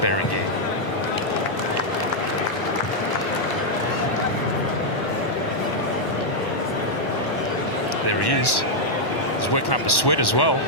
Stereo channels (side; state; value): right; late; 1.1 ms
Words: There he is. He's working up a sweat as well.